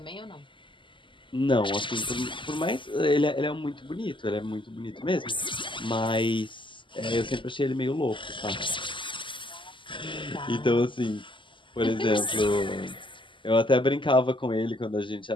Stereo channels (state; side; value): late; right; 0.24 ms